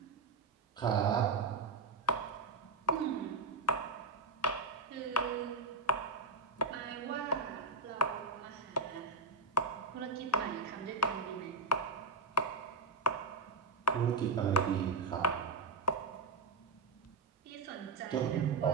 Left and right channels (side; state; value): left; quieter; 3.8 dB